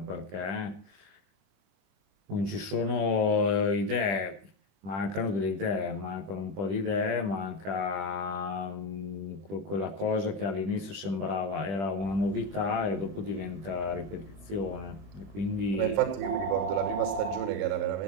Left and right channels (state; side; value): late; left; 20 ms